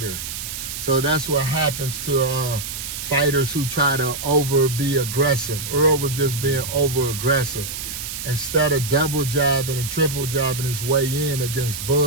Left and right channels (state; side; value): noise; right; hiss, 7 dB below the sound